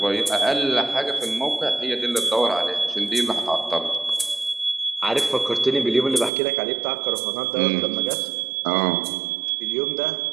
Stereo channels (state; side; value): drops out; left; at 6.3 s